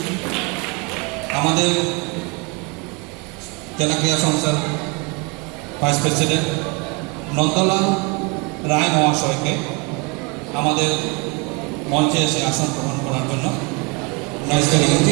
আমাদের জেলা ক্রীড়া সংস্থার ভাইস প্রেসিডেন্ট নন্দলাল রায় মহাশয়কে আমাদের মঞ্চে এসে আসন গ্রহণ করার জন্য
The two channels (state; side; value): quieter; left; 30.3 dB